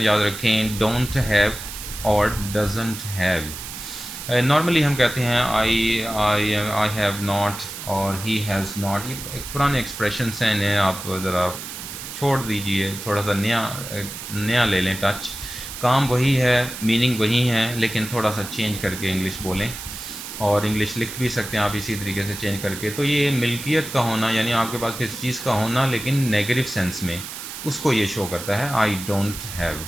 याद रखें, डोंट हैव और डजंट हैव। नॉर्मली हम कहते हैं आई हैव नॉट और ही हैज़ नॉट, ये एक पुराने एक्सप्रेशंस हैं, इन्हें आप ज़रा छोड़ दीजिए, थोड़ा सा नया ले लें टच। काम वही है, मीनिंग वही है, लेकिन थोड़ा सा चेंज करके इंग्लिश बोलें, और इंग्लिश लिख भी सकते हैं आप इसी तरीके से चेंज करके। तो ये मिल्कियत का होना, यानी आपके पास किसी चीज़ का होना लेकिन नेगेटिव सेंस में, उसको ये शो करता है आई डोंट हैव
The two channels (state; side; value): noise; right; hiss, 9 dB below the sound